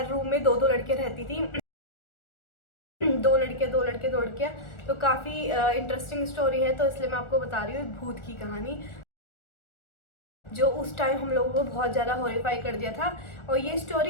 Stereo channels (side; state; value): right; late; 1.4 ms